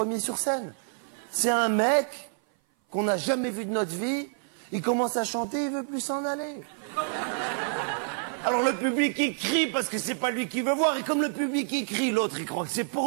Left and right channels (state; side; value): silent; left; 56 dB below the other